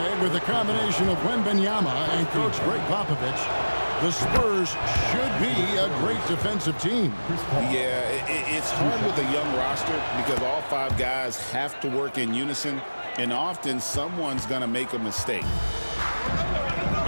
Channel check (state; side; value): inverted; both; correlation -1.00